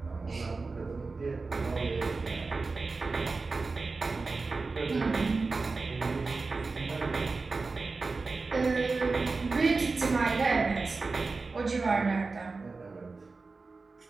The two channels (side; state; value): left; quieter; 4.0 dB